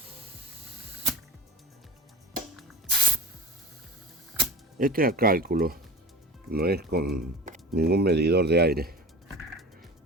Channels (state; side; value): normal; both; correlation 0.35